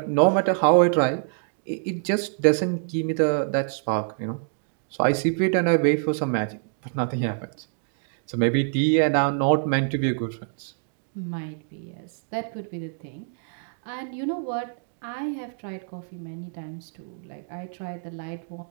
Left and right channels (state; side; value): silent; left; digital silence